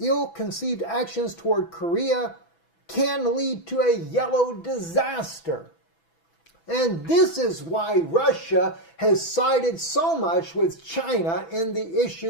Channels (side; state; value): right; late; 6.0 ms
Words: ill-conceived actions toward Korea can lead to a yellow disaster. And this is why Russia has sided so much with China in the issue